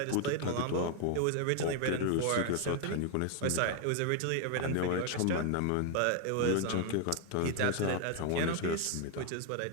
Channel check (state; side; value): different; both; correlation 0.00